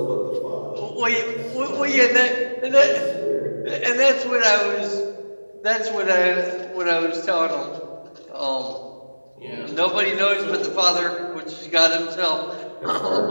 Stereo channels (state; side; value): inverted; both; correlation -1.00